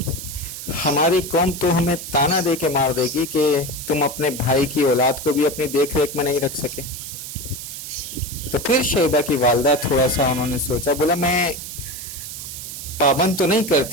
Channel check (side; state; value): right; noise; hiss, 9 dB below the sound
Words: ہماری قوم تو ہمیں تانا دے کے مار دے گی کہ تم اپنے بھائی کی اولاد کو بھی اپنی دیکھ ریکھ میں نہیں رکھ سکے۔ تو پھر شیبہ کی والدہ تھوڑا سا انہوں نے سوچا، بولا میں پابند تو نہیں